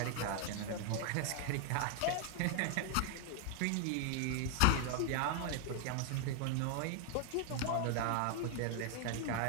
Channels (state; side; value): different; both; correlation 0.00